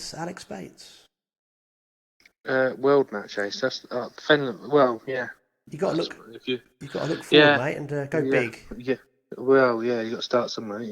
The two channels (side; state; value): both; identical; correlation 1.00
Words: Alex Bates. World match ace. That's Fenland. Well, yeah. You got to look. If you, You got to look forward, yeah, mate, and go yeah, big. yeah. Well, yeah. You got to start somewhere.